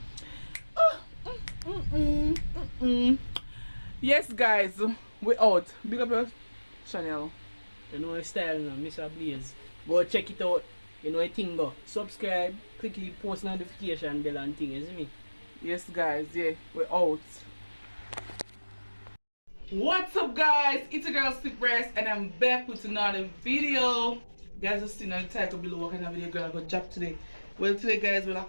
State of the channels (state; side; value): inverted; both; correlation -1.00